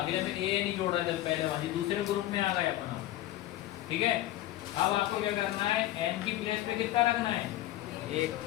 में ए एन ही जोड़ रहा था पहले वाली, दूसरे ग्रुप में आ गए अपना। ठीक है, अब आपको क्या करना है, एन की प्लेस पे कितना रखना है, एक।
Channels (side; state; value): right; quieter; 14.8 dB